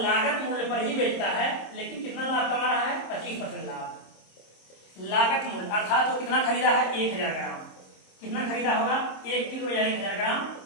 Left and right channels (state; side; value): late; right; 26 ms